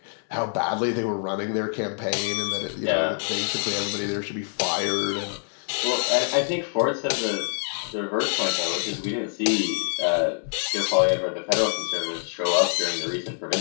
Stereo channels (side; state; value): right; silent; 55 dB below the other